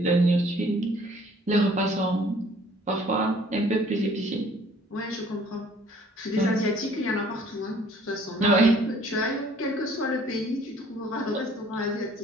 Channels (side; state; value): both; normal; correlation 0.56